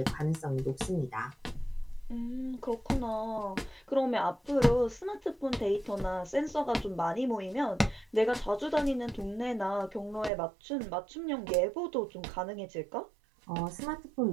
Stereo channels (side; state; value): left; drops out; at 10.3 s